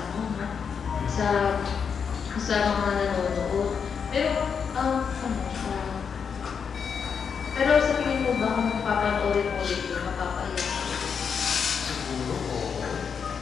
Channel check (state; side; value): quieter; right; 6.5 dB